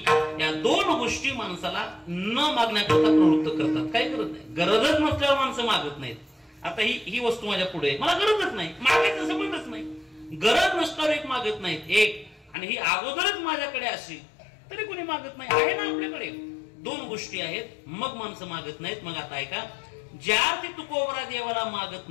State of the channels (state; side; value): drops out; right; at 12.6 s